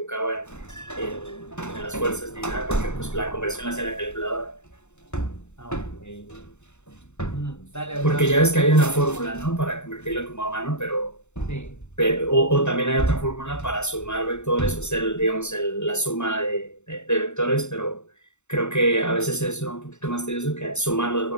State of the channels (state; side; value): late; right; 0.83 ms